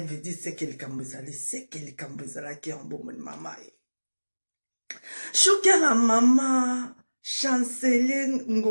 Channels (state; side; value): inverted; both; correlation -1.00